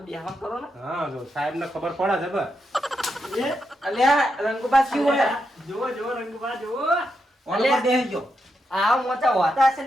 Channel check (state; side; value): normal; both; correlation 0.84